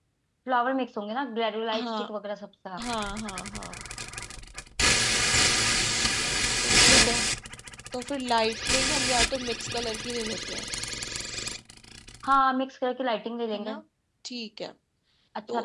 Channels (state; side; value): identical; both; correlation 1.00